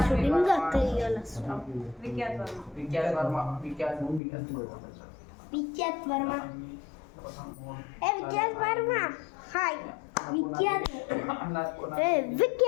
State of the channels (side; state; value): right; drops out; at 4.2 s